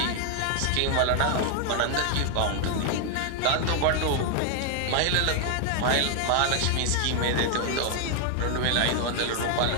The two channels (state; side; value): different; both; correlation 0.00